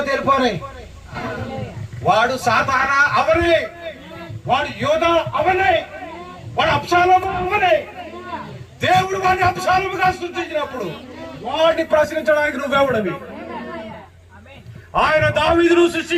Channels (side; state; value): both; identical; correlation 1.00